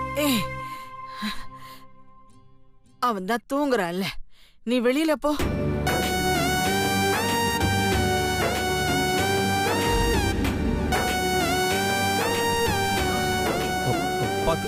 அவன் தான் தூங்குறான்ல, நீ வெளியில போ.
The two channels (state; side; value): identical; both; correlation 1.00